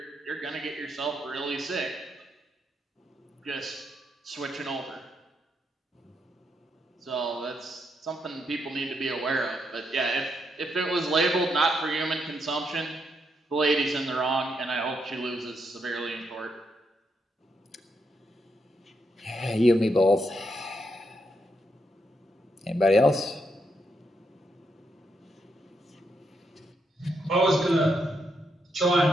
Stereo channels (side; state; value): both; normal; correlation 0.80